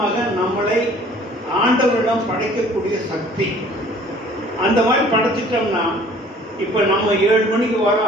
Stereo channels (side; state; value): both; normal; correlation 0.53